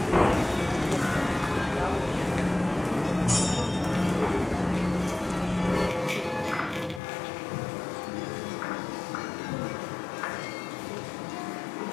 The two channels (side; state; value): right; drops out; at 7.0 s